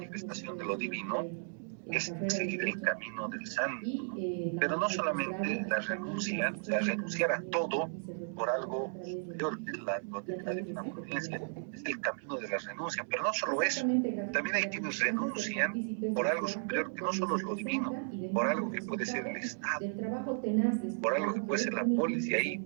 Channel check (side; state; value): left; silent; digital silence